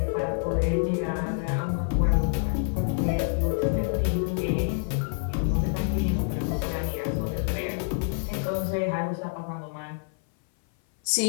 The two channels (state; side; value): silent; right; 58 dB below the other